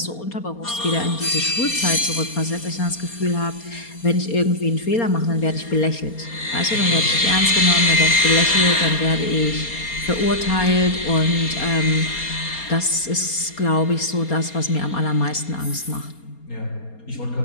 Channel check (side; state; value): right; late; 4.3 ms